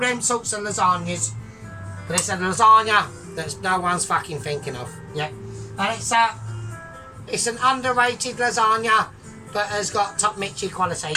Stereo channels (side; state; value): both; identical; correlation 1.00